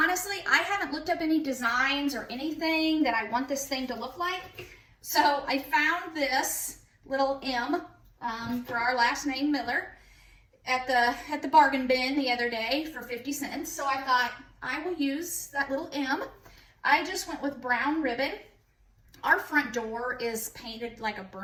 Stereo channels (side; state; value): both; identical; correlation 1.00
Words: I haven't looked up any designs or anything that I want this thing to look like. So I found this little M for our last name Miller at the bargain bin the other day for 50 cents. So I thought I will use that little M. I just went with brown ribbon. Our front door is painted like a